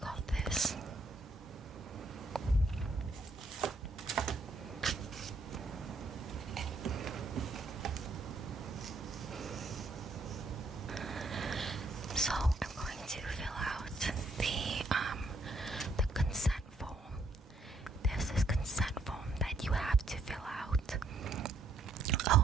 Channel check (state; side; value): quieter; left; 3.1 dB